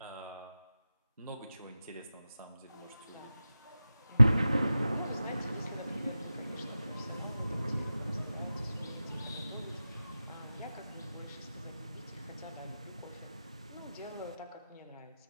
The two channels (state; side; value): inverted; both; correlation -0.94